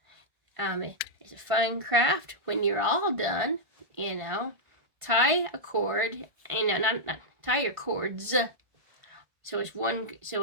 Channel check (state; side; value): late; left; 1.5 ms